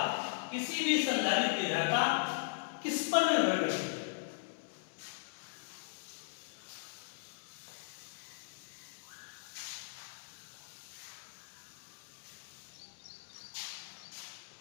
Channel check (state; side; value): silent; right; 52 dB below the other